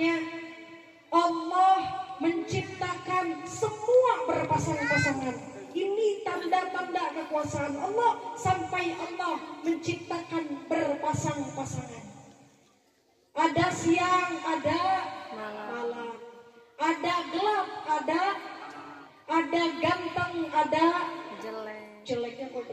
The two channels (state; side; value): identical; both; correlation 1.00